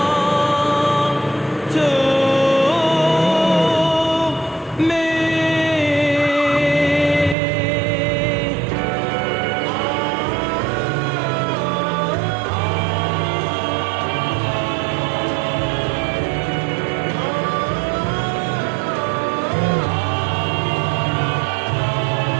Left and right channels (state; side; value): drops out; left; at 7.4 s